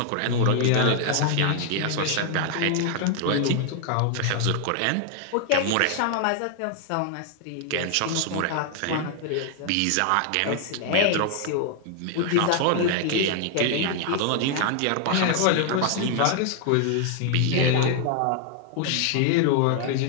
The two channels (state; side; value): different; both; correlation 0.00